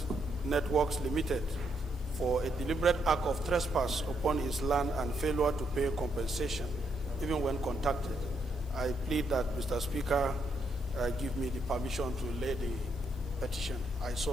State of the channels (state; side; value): normal; both; correlation 0.76